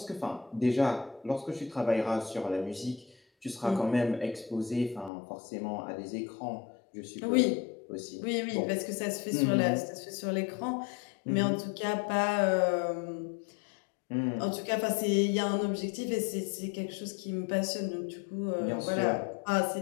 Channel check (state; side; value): drops out; right; at 5.1 s